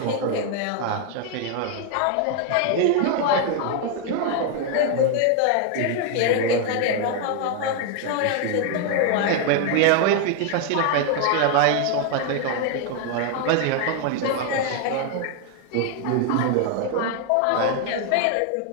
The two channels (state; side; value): different; both; correlation 0.00